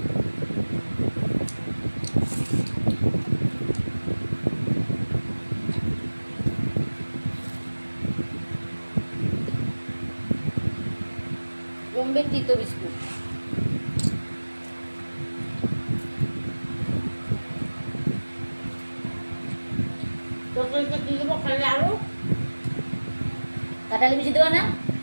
বোম্বে তিতো বিস্কুট। তরকারিতে কি দেবো খালি আলু কাঁঠালি বিচি দেবো না?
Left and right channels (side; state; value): both; inverted; correlation -1.00